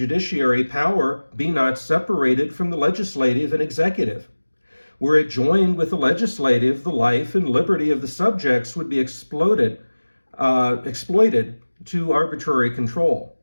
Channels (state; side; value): inverted; both; correlation -1.00